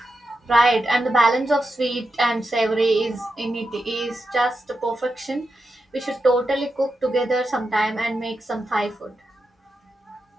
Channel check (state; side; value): normal; both; correlation 0.88